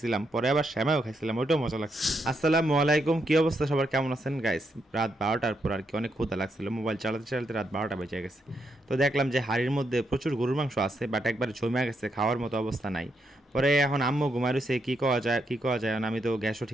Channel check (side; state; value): both; normal; correlation 0.80